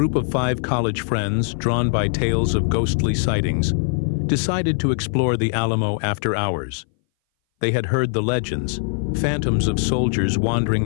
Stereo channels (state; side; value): silent; right; 60 dB below the other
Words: of 5 college friends, drawn by tales of ghostly sightings, decided to explore the Alamo after hours. They had heard the legends, phantoms of soldiers